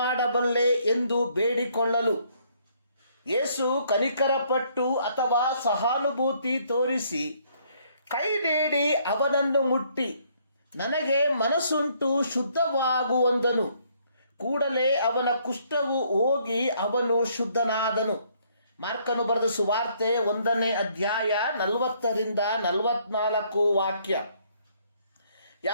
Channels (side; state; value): both; inverted; correlation -0.67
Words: ಎಂದು ಬೇಡಿಕೊಳ್ಳಲು ಯೇಸು ಕನಿಕರಪಟ್ಟು ಅಥವಾ ಸಹಾನುಭೂತಿ ತೋರಿಸಿ ಕೈ ನೀಡಿ ಅವನನ್ನು ಮುಟ್ಟಿ, ನನಗೆ ಮನಸ್ಸುಂಟು, ಶುದ್ಧವಾಗುವಂದನು. ಕೂಡಲೇ ಅವನ ಕುಷ್ಠವು ಹೋಗಿ ಅವನು ಶುದ್ಧನಾದನು. ಮಾರ್ಕನು ಬರೆದ ಸುವಾರ್ತೆ 1ನೇ ಅಧ್ಯಾಯ 40-44 ವಾಕ್ಯ.